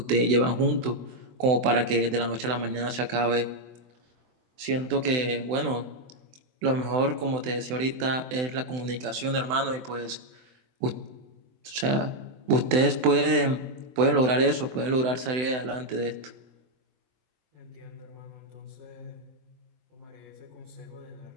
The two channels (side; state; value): left; late; 24 ms